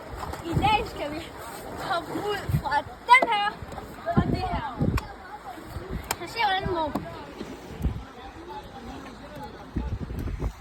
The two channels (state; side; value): identical; both; correlation 1.00